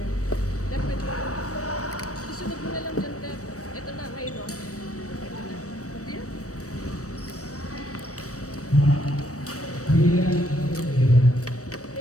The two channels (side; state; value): right; late; 0.66 ms